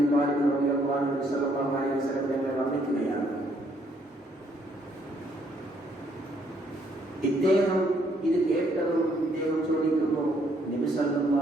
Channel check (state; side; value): normal; both; correlation 0.69